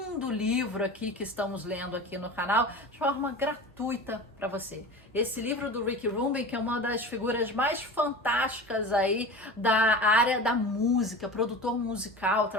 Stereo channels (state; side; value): normal; both; correlation 0.32